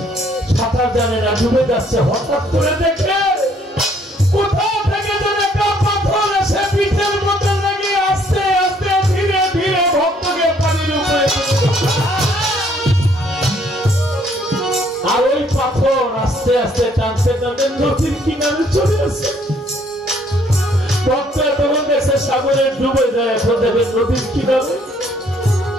সাঁতার জানে না, ডুবে যাচ্ছে। হঠাৎ করে দেখে কোথাও থেকে যেন একটা পাথর এসে পিঠের মধ্যে লেগে আস্তে আস্তে ধীরে ধীরে ভক্তকে পানির উপরে, আর ওই পাথর আস্তে আস্তে টানতে টানতে নদীর কিনারে চলে আসে। ভক্ত তখন দেখছে সাগরে ডুবে যায়, এখন দেখে নদীর কিনারে।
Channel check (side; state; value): both; normal; correlation 0.64